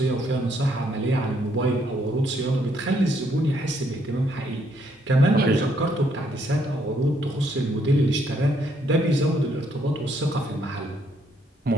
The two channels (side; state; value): both; normal; correlation 0.71